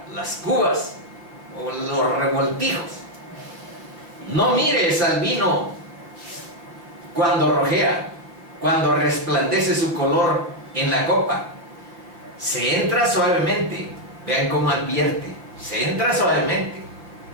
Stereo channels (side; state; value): left; late; 5.6 ms